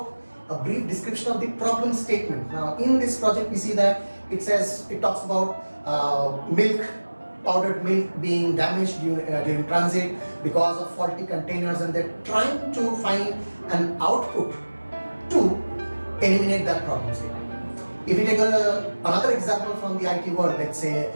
a brief description of the problem statement. Now in this project we see that it talks about powdered milk being damaged during transit because of faulty containers, and they're trying to find an output to eliminate that problem statement. If we take another example from the IT world, let's say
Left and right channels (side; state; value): both; inverted; correlation -1.00